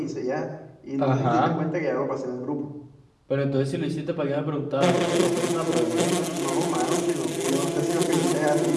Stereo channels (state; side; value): identical; both; correlation 1.00